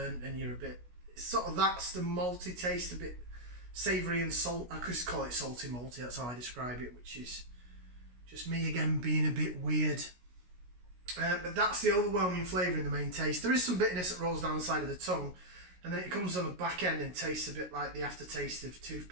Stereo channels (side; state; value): left; late; 16 ms